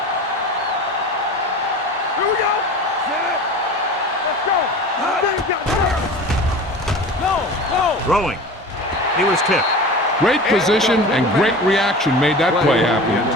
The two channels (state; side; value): normal; both; correlation 0.35